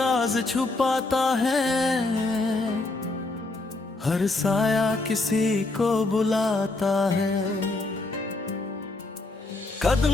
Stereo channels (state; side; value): quieter; right; 3.1 dB